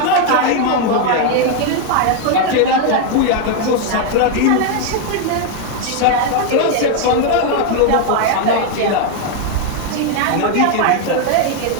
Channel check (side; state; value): both; different; correlation 0.01